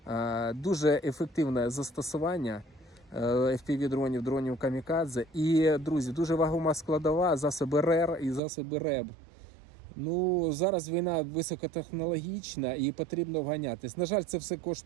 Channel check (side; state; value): left; drops out; at 8.4 s